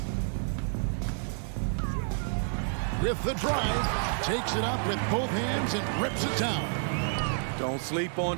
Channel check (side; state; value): left; silent; 58 dB below the other